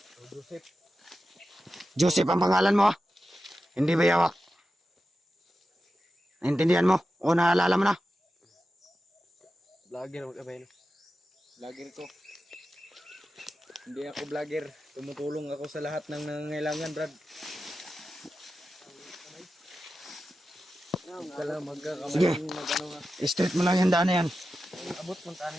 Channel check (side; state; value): both; normal; correlation 0.92